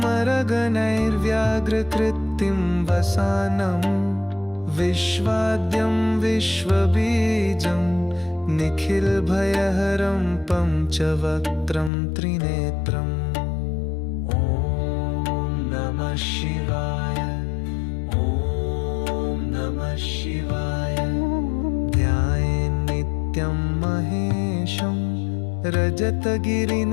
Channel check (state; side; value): drops out; right; at 11.9 s